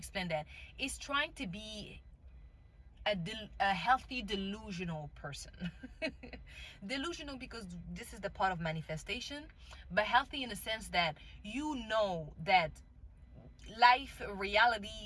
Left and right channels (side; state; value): both; identical; correlation 1.00